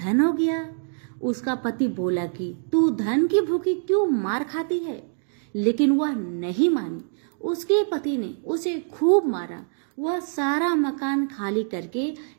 हो गया। उसका पति बोला कि तू धन की भूखी क्यों मार खाती है, लेकिन वह नहीं मानी। उसके पति ने उसे खूब मारा। वह सारा मकान खाली करके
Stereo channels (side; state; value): left; silent; digital silence